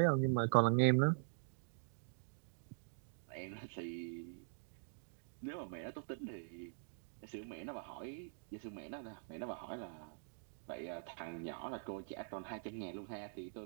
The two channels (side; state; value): left; silent; digital silence